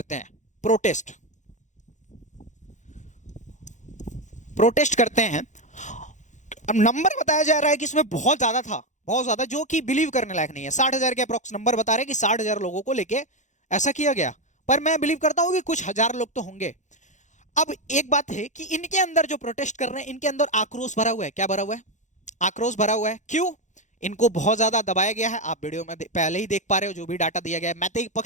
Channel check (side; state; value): right; late; 0.35 ms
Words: हैं, प्रोटेस्ट करते हैं। अब नंबर बताया जा रहा है कि इसमें बहुत ज्यादा था, बहुत ज्यादा, जो कि बिलीव करने लायक नहीं है। 60,000 के अप्रोक्स नंबर बता रहे हैं कि 60,000 लोगों को लेके ऐसा किया गया, पर मैं बिलीव करता हूं कि कुछ हजार लोग तो होंगे। अब एक बात है कि इनके अंदर जो प्रोटेस्ट कर रहे हैं, इनके अंदर आक्रोश भरा हुआ है। क्या भरा हुआ है, आक्रोश भरा हुआ है। क्यों, इनको बहुत ज्यादा दबाया गया है, आप वीडियो में पहले ही देख पा रहे हो, जो भी डाटा दिया गया है, मैतेई